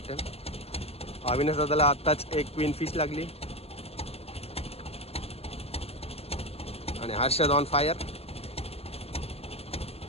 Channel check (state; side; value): late; right; 0.29 ms